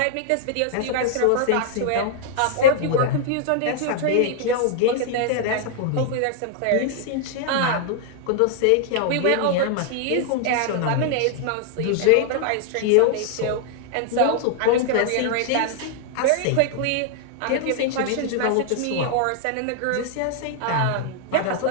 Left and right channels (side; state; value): both; different; correlation 0.00